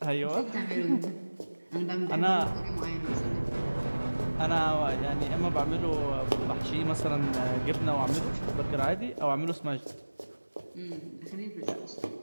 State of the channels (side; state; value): both; inverted; correlation -1.00